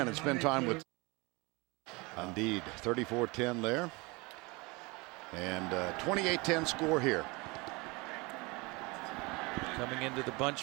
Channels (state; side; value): quieter; left; 25.9 dB